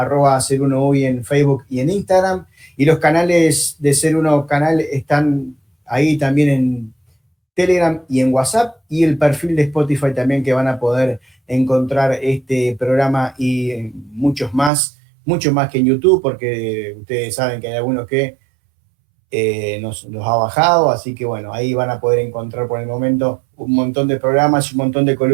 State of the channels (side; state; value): left; drops out; at 14.7 s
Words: en Facebook y en Instagram, y los canales de Ser Uno canal están ahí también en Telegram y en WhatsApp, y el perfil de Spotify también, que van a poder encontrar este programa y muchos más mucho más que en YouTube, porque ustedes saben que hay algunos que nos ha bajado, así que bueno, ahí van a poder encontrar por el momento un montón de programas y un montón de